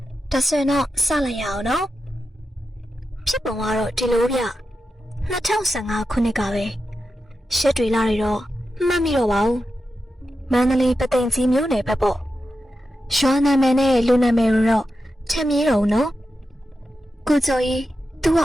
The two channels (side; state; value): both; normal; correlation 0.90